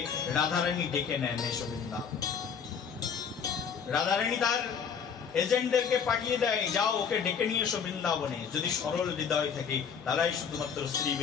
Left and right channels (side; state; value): right; quieter; 6.8 dB